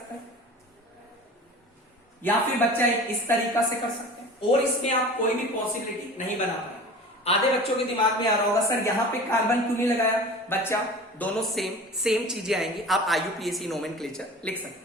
हैं, या फिर बच्चा एक इस तरीका से कर सकते हैं, और इसमें आप कोई भी पॉसिबिलिटी नहीं बना पाए। आधे बच्चों के दिमाग में आ रहा होगा सर यहां पे कार्बन क्यों नहीं लगाया? बच्चा दोनों सेम चीजें आएंगी। आप IUPAC नोमेनक्लेचर लिख सकते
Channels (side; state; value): both; normal; correlation 0.38